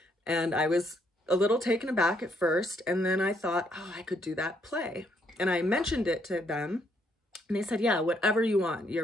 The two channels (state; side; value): normal; both; correlation 0.72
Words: And I was a little taken aback at first, and then I thought, oh, I could do that play. And I mentioned it to them, and they said, yeah, whatever you want,